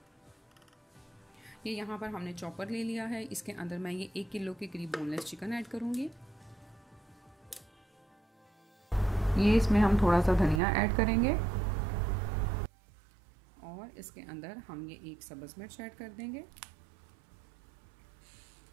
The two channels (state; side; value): drops out; left; at 10.6 s